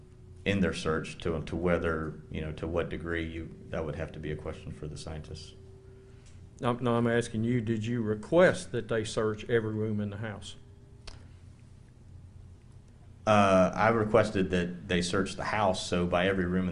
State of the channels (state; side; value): identical; both; correlation 1.00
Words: in their search. To whether, to what degree that would have to be a question for the scientists. No, I'm asking you, did you request that they search every room in the house? I requested that they search the house, so by every room